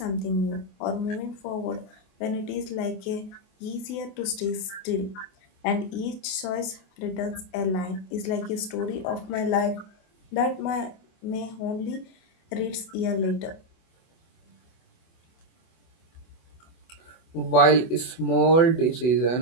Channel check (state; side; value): late; right; 24 ms